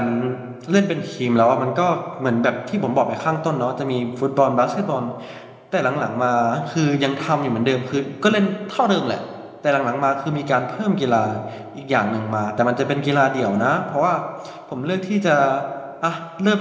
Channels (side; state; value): both; identical; correlation 1.00